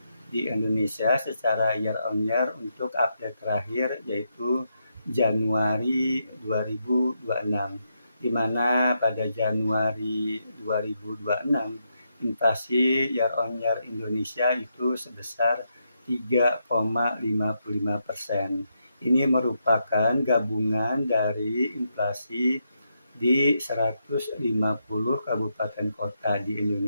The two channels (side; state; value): both; inverted; correlation -0.82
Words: di Indonesia secara year on year untuk update terakhir, yaitu Januari 2026, di mana pada Januari 2026 inflasi year on year Indonesia itu sebesar 3,55%. Ini merupakan gabungan dari inflasi di 150 kabupaten kota di